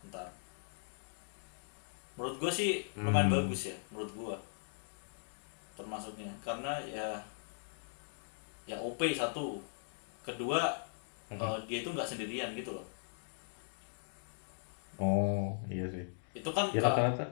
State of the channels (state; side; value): silent; right; digital silence